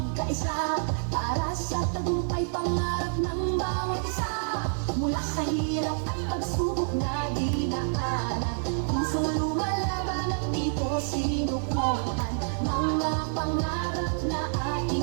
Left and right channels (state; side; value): silent; left; digital silence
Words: para sa tagumpay pangarap ng bawat isa. Mula sa hirap at pagsubok na dinaanan, pusong lumalaban at dito sinukuhan. Mga pangarap na